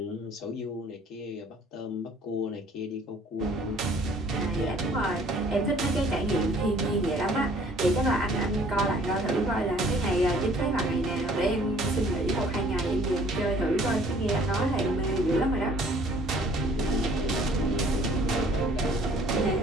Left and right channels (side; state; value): both; normal; correlation 0.56